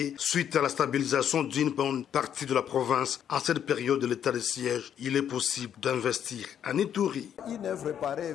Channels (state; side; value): quieter; right; 9.3 dB